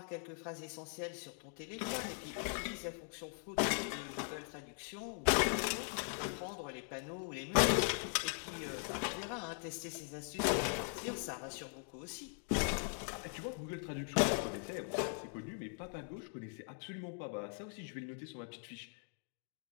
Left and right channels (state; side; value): silent; right; 51 dB below the other